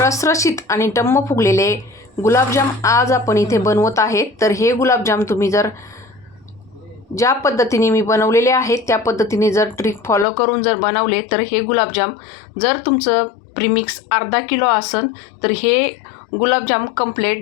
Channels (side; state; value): right; drops out; at 10.2 s